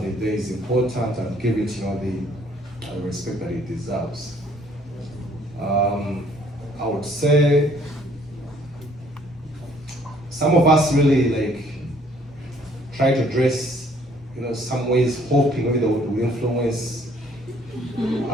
the day is important and give it the respect that it deserves. I would say some of us really try to dress, some ways hoping maybe that will influence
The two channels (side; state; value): both; normal; correlation 0.61